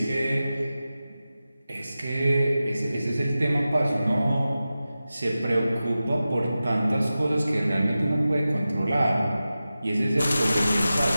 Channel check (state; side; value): inverted; both; correlation -0.94